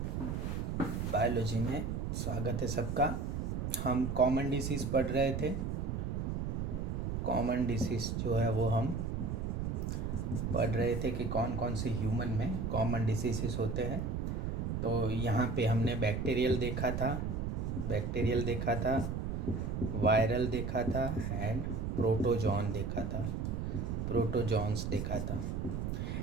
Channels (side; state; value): right; noise; rumble, 2 dB below the sound